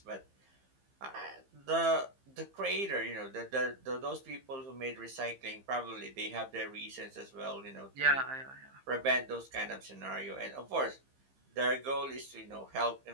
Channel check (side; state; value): left; late; 15 ms